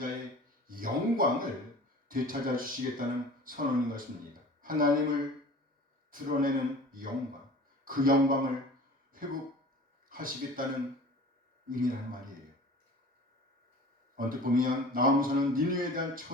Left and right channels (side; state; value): both; normal; correlation 0.42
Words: 영광을 되찾아 주시겠다는 선언인 것입니다. 하나님을 드러내는 영광, 그 영광을 회복하시겠다는 의미라는 말이에요. 언뜻 보면 나아무서는 니느웨에 대한